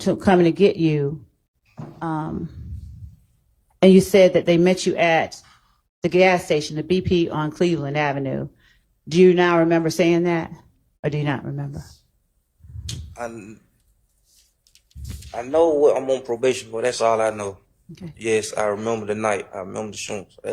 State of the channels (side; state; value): both; identical; correlation 1.00